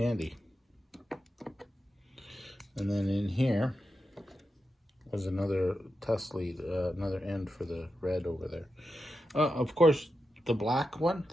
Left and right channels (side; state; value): both; normal; correlation 0.89